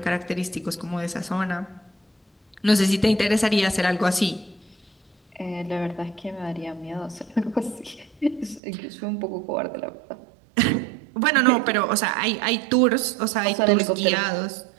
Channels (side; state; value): left; drops out; at 8.6 s